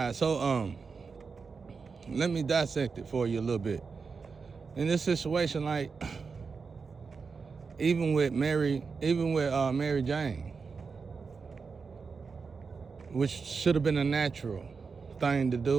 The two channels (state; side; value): quieter; left; 5.1 dB